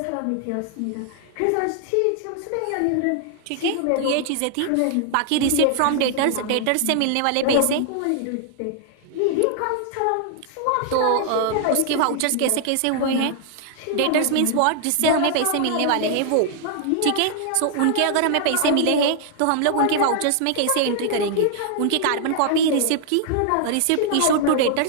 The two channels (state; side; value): different; both; correlation 0.00